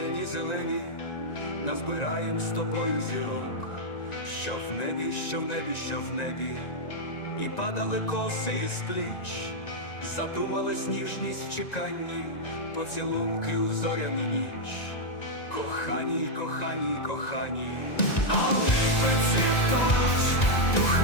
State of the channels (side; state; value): right; late; 1.9 ms